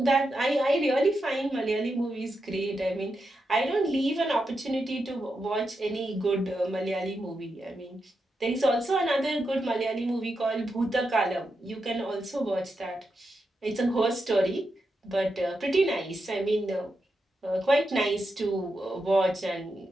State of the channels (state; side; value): normal; both; correlation 0.86